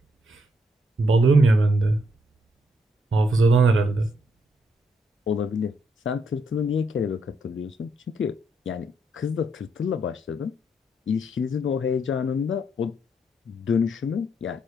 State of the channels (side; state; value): both; normal; correlation 0.76